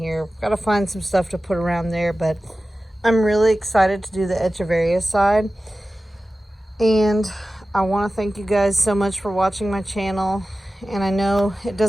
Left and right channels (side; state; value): both; normal; correlation 0.95